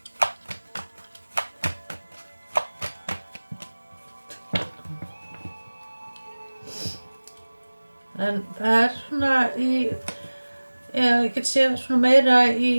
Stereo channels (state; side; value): inverted; both; correlation -1.00